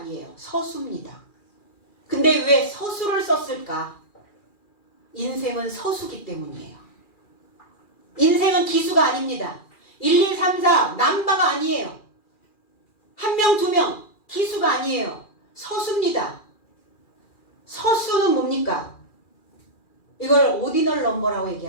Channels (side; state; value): right; late; 2.4 ms